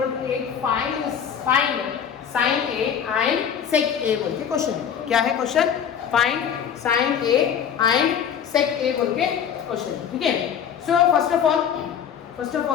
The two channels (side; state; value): right; quieter; 8.1 dB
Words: to 8, find sin A and sec A बोल के क्वेश्चन. क्या है question? Find sin A and sec A बोल के क्वेश्चन. ठीक है, so first of